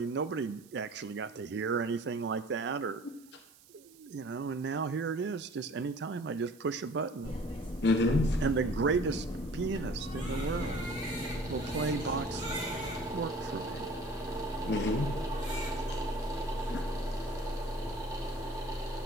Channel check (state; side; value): noise; right; hiss, 25 dB below the sound